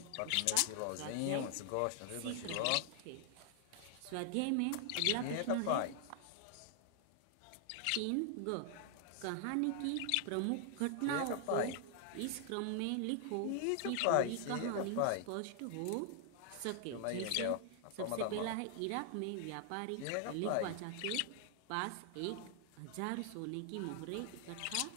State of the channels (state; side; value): different; both; correlation 0.00